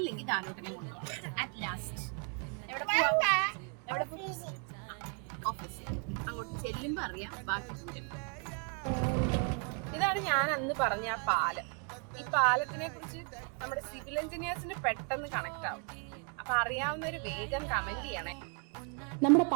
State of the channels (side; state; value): left; quieter; 38.8 dB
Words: കാനൂട്ടിനെ കൊണ്ടുപോകണം. അറ്റ് ലാസ്റ്റ് ഓഫീസിൽ അങ്ങോട്ട് ചെല്ലുമ്പോ അറിയാം ബാക്കി. ഇതാണ് ഞാൻ അന്ന് പറഞ്ഞ ആ പാലം. ഈ പാലത്തിനെ കുറിച്ച് നമ്മുടെ സിവിൽ എഞ്ചിനീയേഴ്സിന് പെട്ടെന്ന് കണക്ട് ആവും. അപ്പൊ അറിയാവുന്നവര് വേഗം കമന്റ് ചെയ്യണേ. നമ്മുടെ